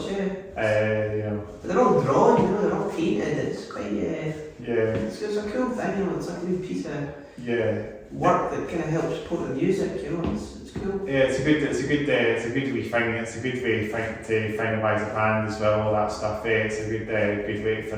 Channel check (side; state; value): both; identical; correlation 1.00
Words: But they're all drawn, you know, they're all painted. It's quite It's a cool thing, you know. It's like a new piece of work that kind of helps support the music, you know. It's cool. Yeah, it's a good wee thing. It's a good way to finalise a band as well. All that stuff. It's a good way to